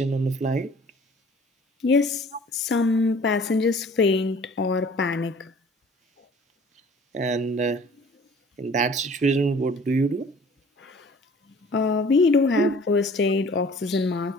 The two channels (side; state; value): both; normal; correlation 0.50